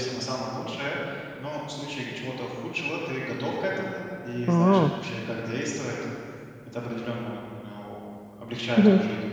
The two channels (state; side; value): identical; both; correlation 1.00